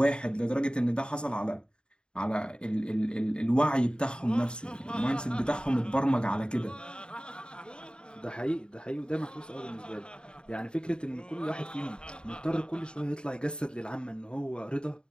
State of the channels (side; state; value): right; late; 0.051 ms